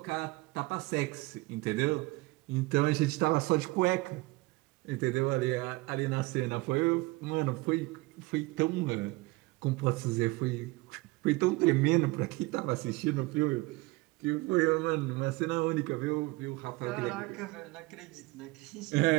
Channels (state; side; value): quieter; left; 22.8 dB